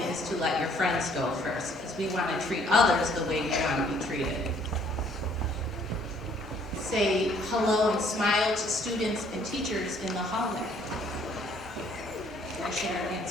is to let your friends go first, because we want to treat others the way we want to be treated. Say hello and smile to students and teachers in the hallway. Can I share an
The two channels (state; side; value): normal; both; correlation 0.61